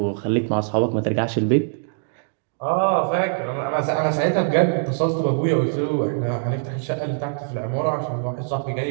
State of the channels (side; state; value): left; silent; digital silence